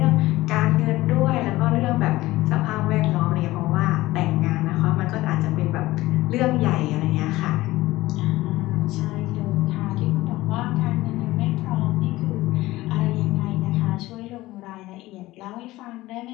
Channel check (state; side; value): quieter; right; 18.0 dB